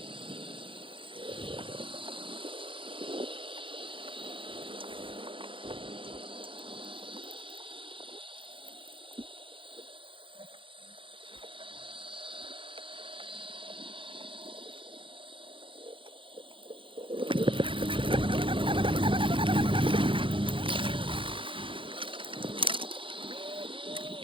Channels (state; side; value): late; left; 0.25 ms